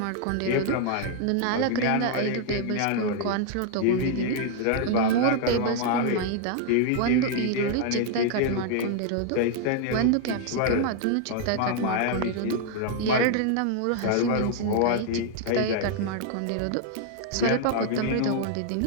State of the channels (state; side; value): different; both; correlation 0.00